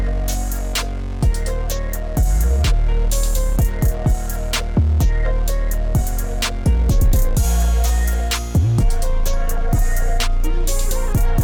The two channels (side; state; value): both; identical; correlation 1.00